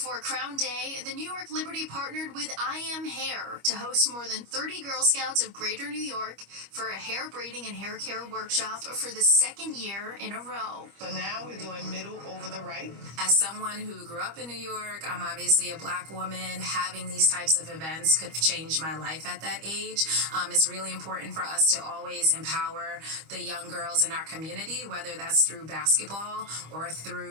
Crown Day, the New York Liberty partnered with I Am Hair to host more than 30 Girl Scouts of Greater New York for a hair braiding and hair care workshop for the second year in a row. So now we're doing middle over the right. As someone who grew up in New York, I'm obviously a Black woman. Having these types of events could have changed my life at that age. It's really important for us to always empower the young girls in our community, whether that's through basketball or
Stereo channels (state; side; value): late; left; 25 ms